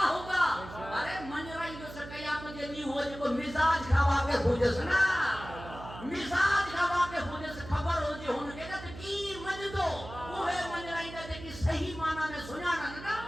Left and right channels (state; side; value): noise; right; hum, 13 dB below the sound